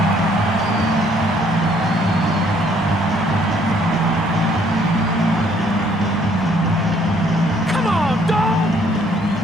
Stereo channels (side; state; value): right; noise; rumble, 22 dB below the sound